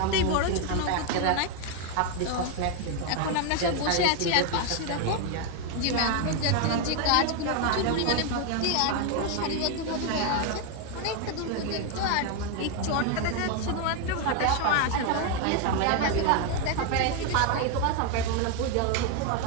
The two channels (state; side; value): different; both; correlation 0.01